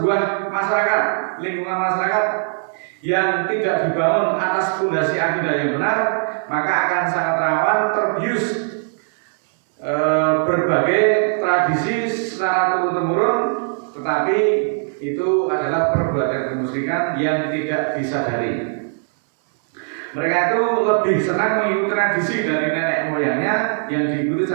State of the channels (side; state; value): left; silent; digital silence